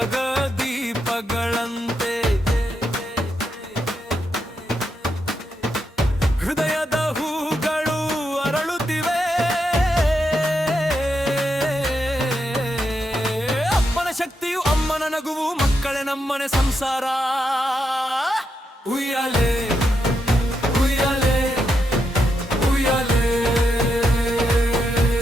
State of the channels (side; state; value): both; normal; correlation 0.83